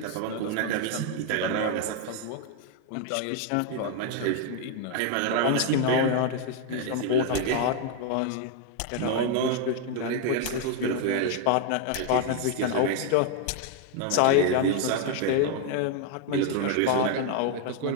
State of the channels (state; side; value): different; both; correlation 0.00